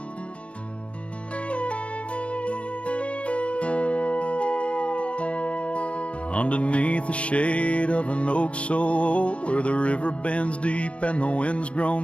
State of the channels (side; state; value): right; late; 0.061 ms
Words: Underneath the shade of an oak so old, where the river bends deep and the wind's